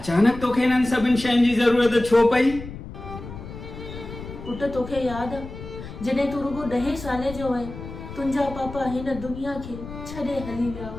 तोखे हिननि सभिनि शयुनि जी ज़रूरत छो पई? पुट तोखे यादि आहे जॾहिं तूं रुगो 10 साले जो आहे, तुंहिंजा पापा हिन दुनिया खे छॾे हली विया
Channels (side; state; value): left; noise; rumble, 12 dB below the sound